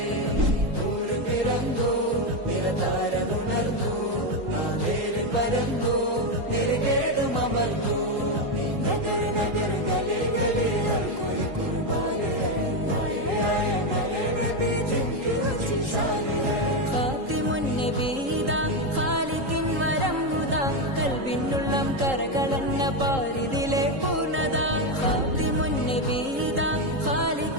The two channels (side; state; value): left; late; 3.8 ms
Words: നൂർ പിറന്നു നിറതാരമുണർന്നു, ആ നേര് പരന്നു നെരുകേടും അമർന്നു। നഗർ നഗർ ഗലി ഗലി ഹർ കോയി കുർബാൻ ഹൈ, ആയ നബി നബി ജിൻകി ഊंची शान है। ഖാതിമുൻ നബീദാ ഖാലിഖിൻ വരം ഹുദാ, കൽബിനുള്ളം കരകളന്ന പാരിതിലെ പൂർണ്ണത। ഖാതിമുൻ നബീദാ